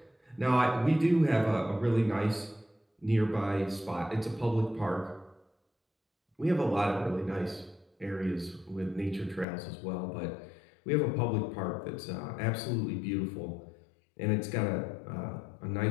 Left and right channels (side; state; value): right; drops out; at 9.5 s